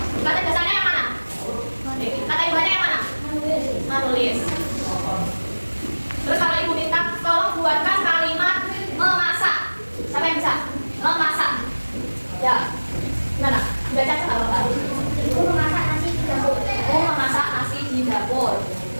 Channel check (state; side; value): inverted; both; correlation -1.00